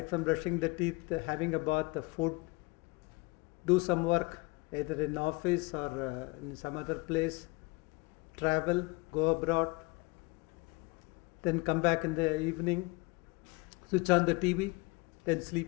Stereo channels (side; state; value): right; quieter; 24.3 dB